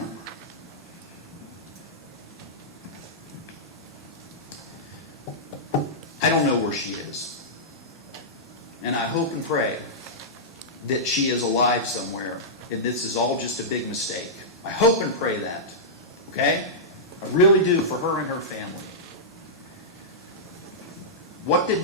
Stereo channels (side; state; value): both; normal; correlation -0.13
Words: I don't know where she is. And I hope and pray that she is alive somewhere and this is all just a big mistake. I hope and pray that. Okay? I really do, for her and her family. What did